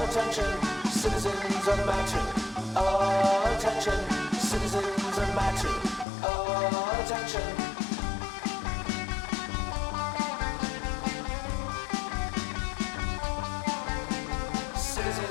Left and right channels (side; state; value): right; drops out; at 6.1 s